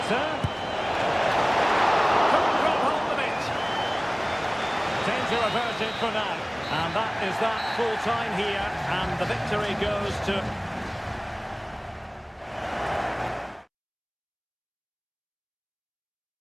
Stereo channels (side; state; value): both; identical; correlation 1.00